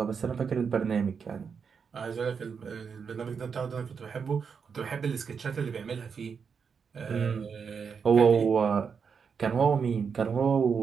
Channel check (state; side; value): quieter; left; 6.2 dB